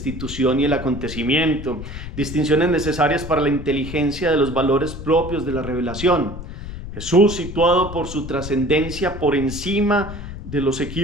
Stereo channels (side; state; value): left; noise; rumble, 10 dB below the sound